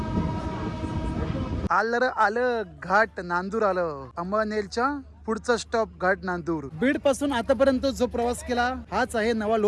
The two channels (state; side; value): identical; both; correlation 1.00